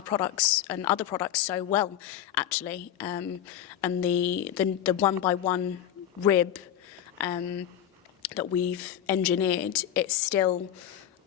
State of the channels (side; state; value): right; quieter; 10.7 dB